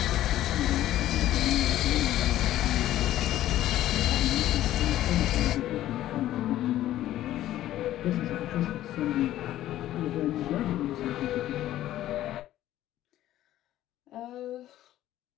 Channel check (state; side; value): quieter; right; 13.5 dB